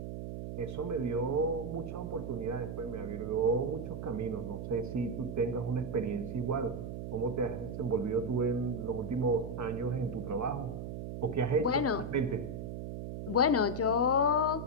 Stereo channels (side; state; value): right; noise; hum, 6 dB below the sound